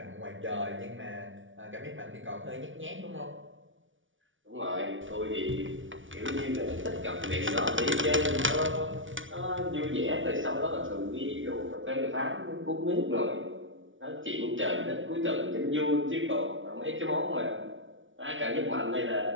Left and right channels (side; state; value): left; late; 0.56 ms